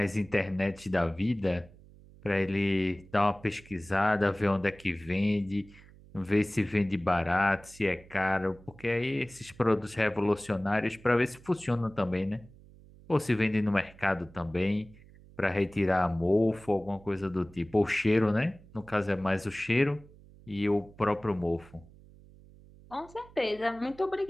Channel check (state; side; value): noise; right; hum, 23 dB below the sound